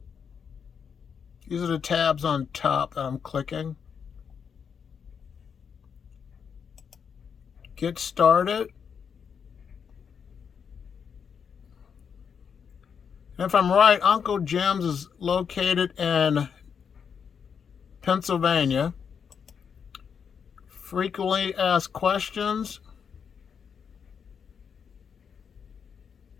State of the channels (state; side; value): quieter; right; 6.9 dB